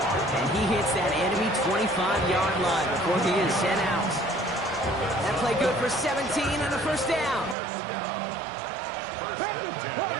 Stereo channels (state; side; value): drops out; left; at 7.6 s